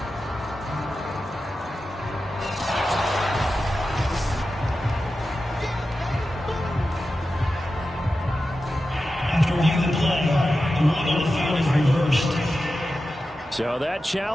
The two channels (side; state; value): both; normal; correlation 0.92